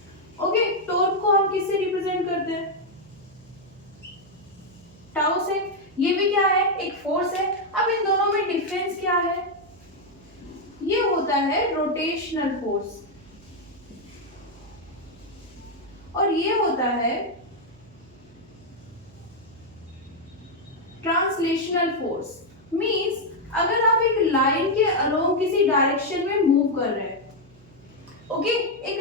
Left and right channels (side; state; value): right; noise; hum, 26 dB below the sound